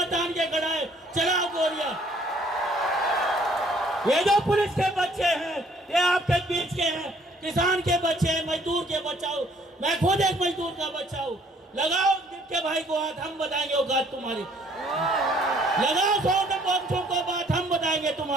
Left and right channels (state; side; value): normal; both; correlation 0.60